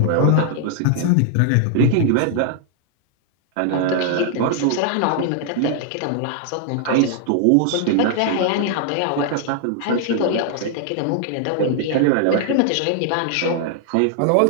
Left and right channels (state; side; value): different; both; correlation 0.00